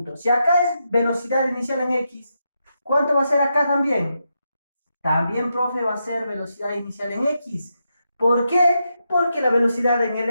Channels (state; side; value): inverted; both; correlation -0.84